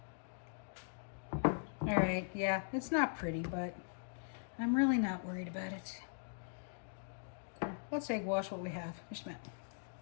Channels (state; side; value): silent; right; digital silence